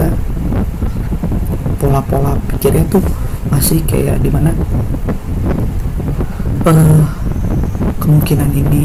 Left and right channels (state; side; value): identical; both; correlation 1.00